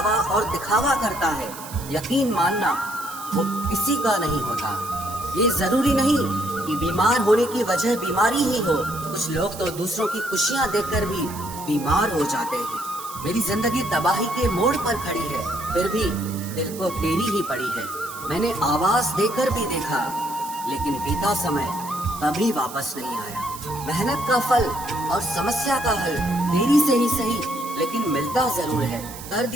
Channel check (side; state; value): right; noise; hiss, 13 dB below the sound